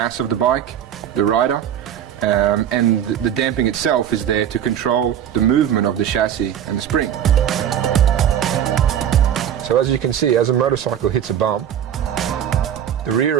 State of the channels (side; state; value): left; quieter; 9.8 dB